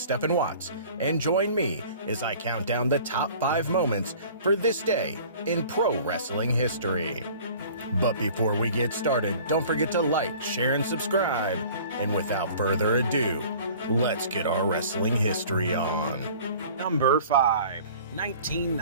Watts, and join me as I count down the top 5 moments for this day in pro wrestling history. But before we get started, don't forget to like, share, and subscribe. And without further ado, let's get our wrestling history on. Number 5,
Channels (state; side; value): inverted; both; correlation -0.47